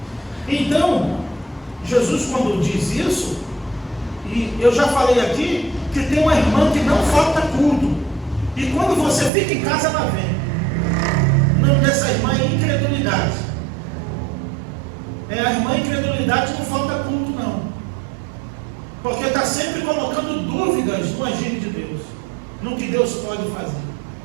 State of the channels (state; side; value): drops out; left; at 9.3 s